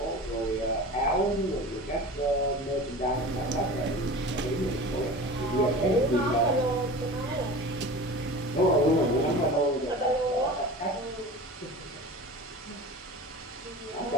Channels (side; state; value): both; normal; correlation 0.35